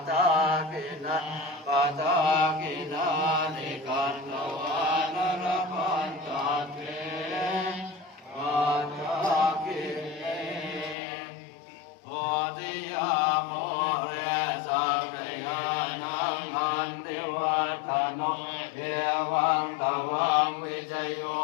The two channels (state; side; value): drops out; right; at 11.0 s